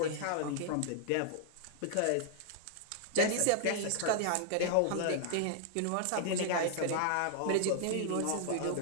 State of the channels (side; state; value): both; different; correlation -0.01